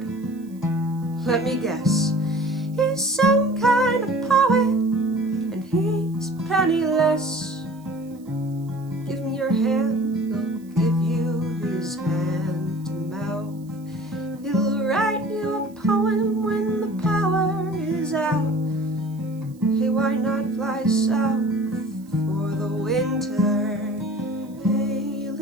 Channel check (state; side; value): noise; right; hiss, 29 dB below the sound